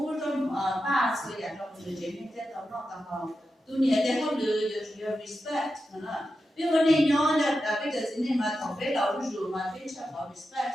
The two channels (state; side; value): normal; both; correlation 0.90